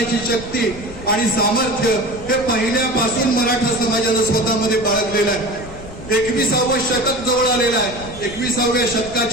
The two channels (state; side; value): noise; left; rumble, 14 dB below the sound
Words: शक्ती आणि सामर्थ्य हे पहिल्यापासून मराठा समाजानं स्वतःमध्ये बाळगलेलं आहे. 21वे शतक जवळ आलेलं आहे. 21व्या